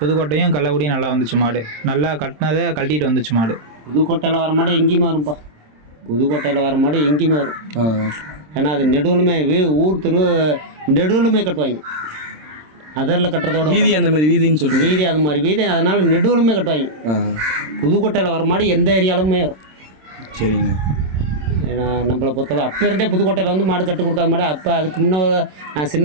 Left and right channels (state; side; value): late; left; 26 ms